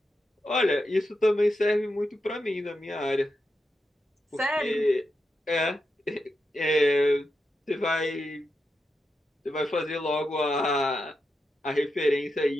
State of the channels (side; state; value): both; normal; correlation 0.87